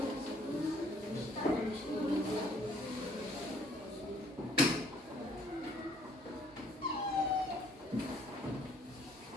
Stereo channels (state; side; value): normal; both; correlation 0.61